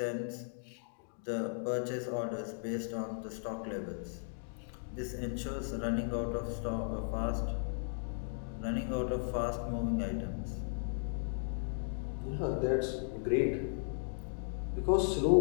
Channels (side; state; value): right; silent; digital silence